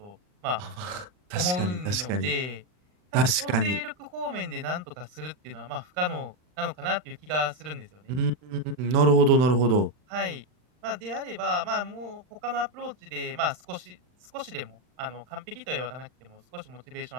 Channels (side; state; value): left; late; 39 ms